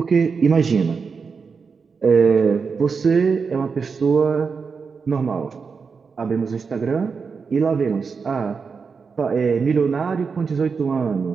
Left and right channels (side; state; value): left; quieter; 5.3 dB